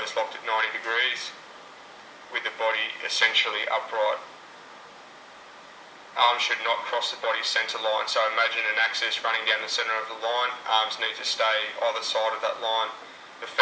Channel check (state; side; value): identical; both; correlation 1.00